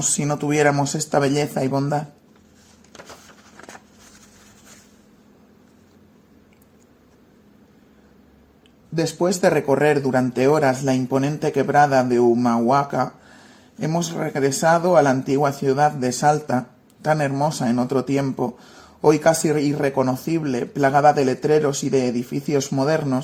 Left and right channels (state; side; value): identical; both; correlation 1.00